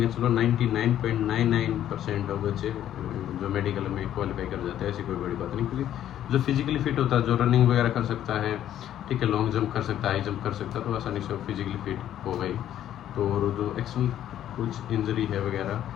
चलो 99.99% of बच्चे जो मेडिकल में क्वालिफाई कर जाते हैं, ऐसी कोई बड़ी बात नहीं। क्योंकि जो फिजिकली फिट होता है, जो रनिंग वगैरह कर सकता है, ठीक है, लॉन्ग जंप कर सकता है, हाई जंप कर सकता है, तो आसानी से फिजिकली फिट हो गई। तो और जो एक्चुअल कुछ इंजरी है वगैरह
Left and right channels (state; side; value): quieter; right; 11.4 dB